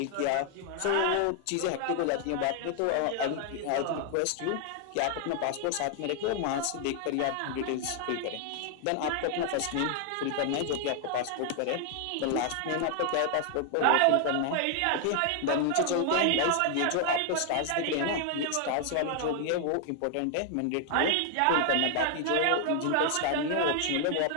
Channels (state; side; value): different; both; correlation 0.00